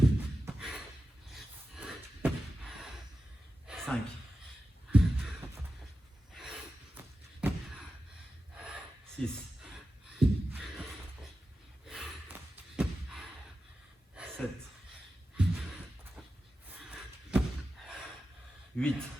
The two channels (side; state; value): both; normal; correlation 0.92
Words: 5. 6. 7. 8.